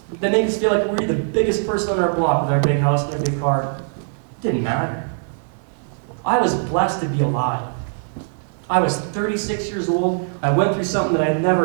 that make us feel like we're the biggest person on our block with our big house and our big car, didn't matter. I was blessed to be alive. I was 36 years old. I went through something that I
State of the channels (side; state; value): left; silent; digital silence